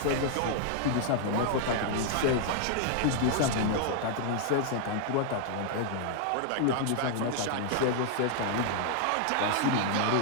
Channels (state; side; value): different; both; correlation -0.01